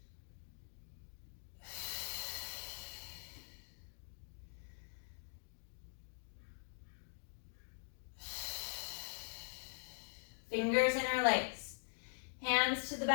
Fingers interlace. Hands to the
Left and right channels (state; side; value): silent; right; digital silence